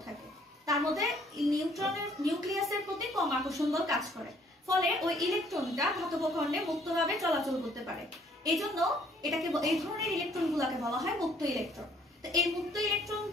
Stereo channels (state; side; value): normal; both; correlation 0.62